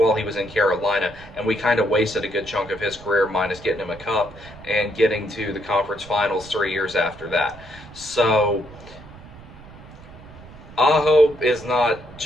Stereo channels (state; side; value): noise; right; rumble, 19 dB below the sound